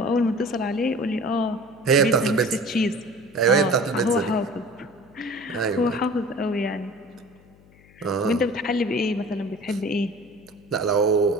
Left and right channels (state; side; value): noise; left; hum, 27 dB below the sound